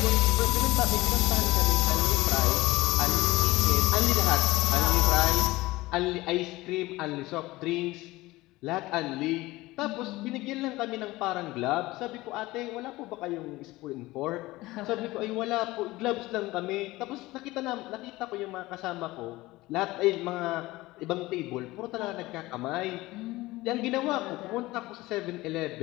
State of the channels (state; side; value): quieter; right; 19.2 dB